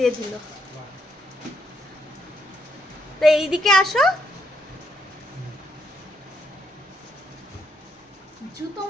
দিল। তো এইদিকে আসো। জুতো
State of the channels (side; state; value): both; normal; correlation 0.75